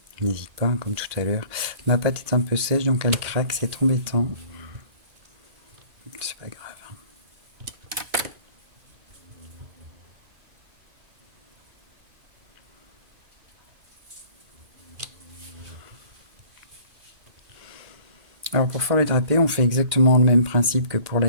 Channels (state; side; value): late; left; 2.1 ms